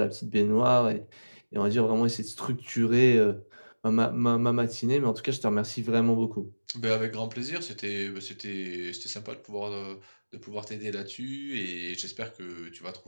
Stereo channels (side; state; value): both; inverted; correlation -1.00